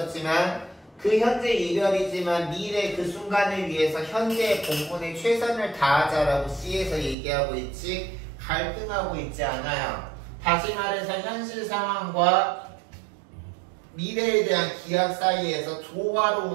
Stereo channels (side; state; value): left; drops out; at 7.2 s